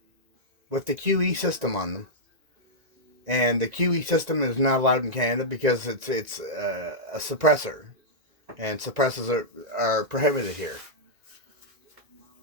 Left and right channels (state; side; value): late; left; 1.9 ms